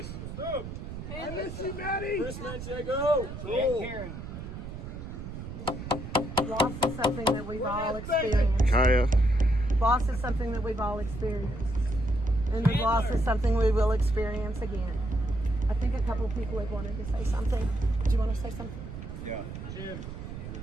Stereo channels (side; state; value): right; noise; rumble, 9 dB below the sound